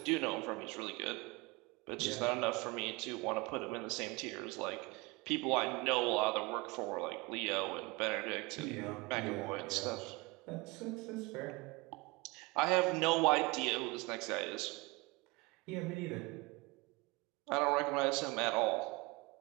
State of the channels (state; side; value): quieter; left; 25.1 dB